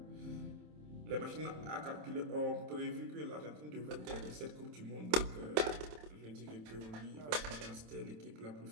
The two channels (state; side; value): late; left; 27 ms